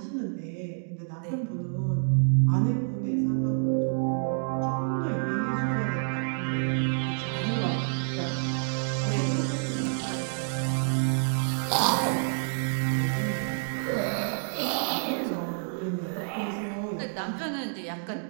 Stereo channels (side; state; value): left; silent; digital silence